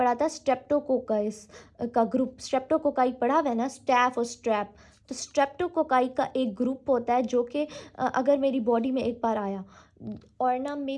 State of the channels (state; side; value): identical; both; correlation 1.00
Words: था स्ट्रेप्टोकोकाइस का ग्रुप, स्ट्रेप्टोकोकाई पढ़ा हुआ है ना, स्टैफ और स्ट्रैप, तो स्ट्रेप्टोकोकाई का एक ग्रुप होता है जो कि अगर मेरी बॉडी में एक बार आया और ना